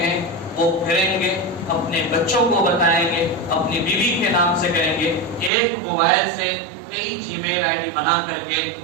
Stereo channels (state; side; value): drops out; left; at 5.5 s